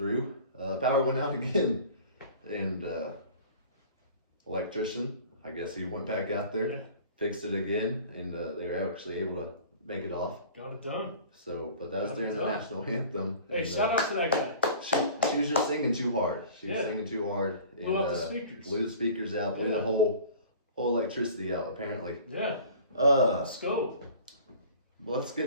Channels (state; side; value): inverted; both; correlation -0.44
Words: power went out again. And electrician, I guess he went back out there, fixed it again. And they were actually able to make it off. Got it done. So, but that was during the national anthem. Hey, shout out to that guy. She was just singing too hard. She was singing too hard. And, blew out the speakers. Blew the speakers out. Blew the whole electricity out. Apparently. Yeah. Let's go. Let's